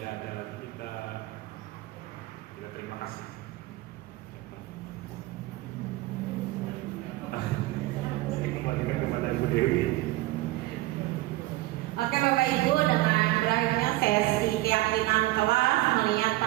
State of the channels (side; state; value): left; quieter; 18.5 dB